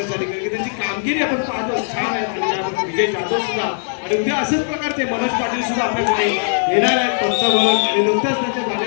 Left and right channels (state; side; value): silent; right; digital silence